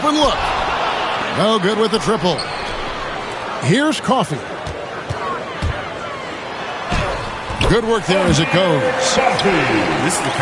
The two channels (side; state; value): both; identical; correlation 1.00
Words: look. No good with the triple. Here's Coffey. Good work there as it goes. This is the